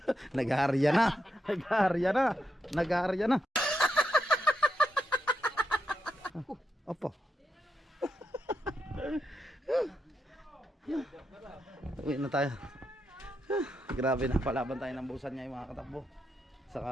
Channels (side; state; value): both; normal; correlation 0.83